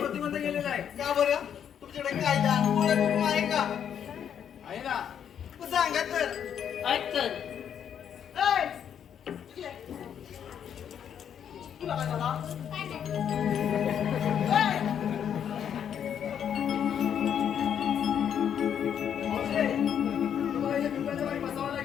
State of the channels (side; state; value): right; quieter; 8.7 dB